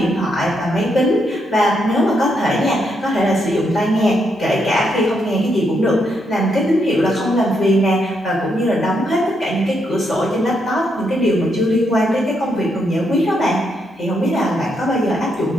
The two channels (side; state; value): both; normal; correlation 0.78